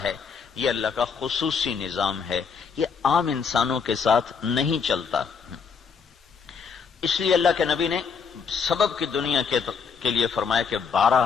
ہے. یہ اللہ کا خصوصی نظام ہے، یہ عام انسانوں کے ساتھ نہیں چلتا۔ اس لیے اللہ کے نبی نے سبب کی دنیا کے لیے فرمایا کہ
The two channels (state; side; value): quieter; right; 6.0 dB